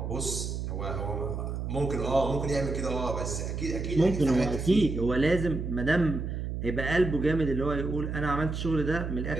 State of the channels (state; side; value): noise; right; hum, 4 dB below the sound